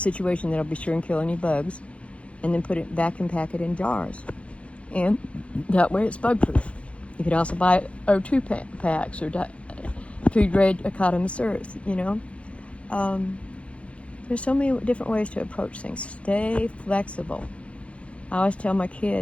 that'll be sure and kill any bugs, and then vacuum pack it in jars. And that way it's bug-proof. You could also buy O2 packs or food-grade Academy-Earth, There's so many different ways to approach things. Stay flexible. I always tell my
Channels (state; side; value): late; right; 0.062 ms